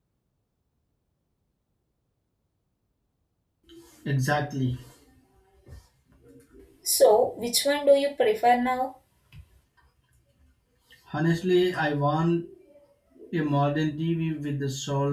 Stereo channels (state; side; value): identical; both; correlation 1.00